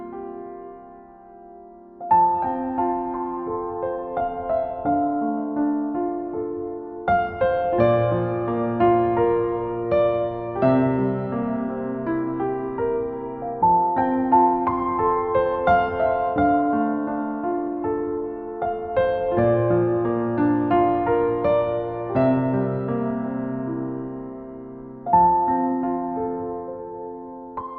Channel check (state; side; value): identical; both; correlation 1.00